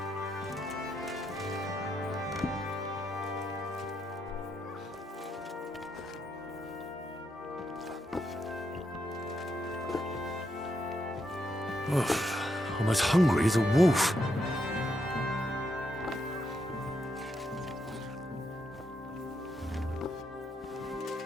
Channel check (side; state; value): both; normal; correlation 0.80